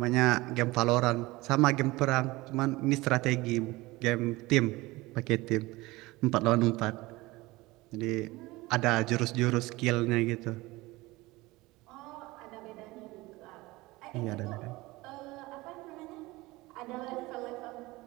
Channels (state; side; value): quieter; left; 20.8 dB